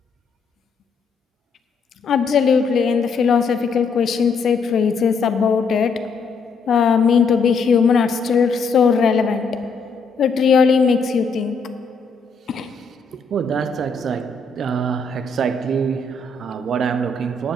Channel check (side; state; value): right; quieter; 4.4 dB